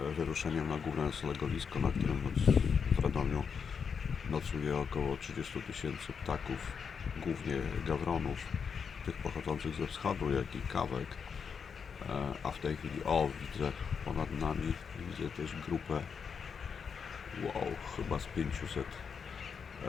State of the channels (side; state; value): right; quieter; 6.3 dB